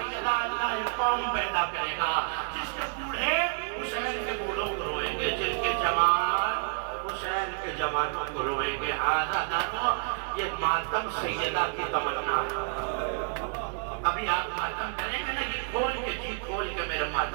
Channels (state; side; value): silent; left; 58 dB below the other